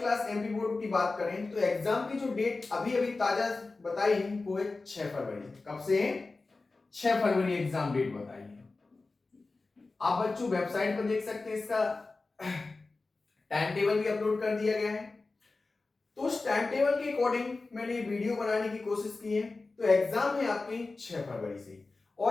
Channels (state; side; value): quieter; right; 3.6 dB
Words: एमपी बोर्ड की बात करें तो एग्जाम की जो डेट अभी अभी ताजा बताई है वो है 6 फरवरी। कब से है? 6 फरवरी एग्जाम डेट बताई है। आप बच्चों वेबसाइट पर देख सकते हैं, इसका टाइम टेबल भी अपलोड कर दिया गया है। तो उस टाइम टेबल के अकॉर्डिंग मैंने वीडियो बनाने की कोशिश की है। तो एग्जाम है आपके 6 फरवरी से